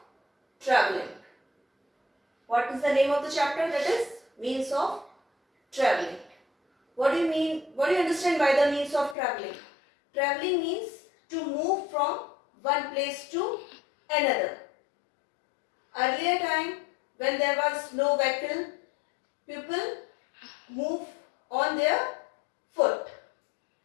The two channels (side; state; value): right; drops out; at 9.2 s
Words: Traveling. What is the name of the chapter? That is Means of Traveling. What do you mean? What do you understand by the means of traveling? Traveling means to move from one place to another. Earlier time, when there was no vehicle, people move on their foot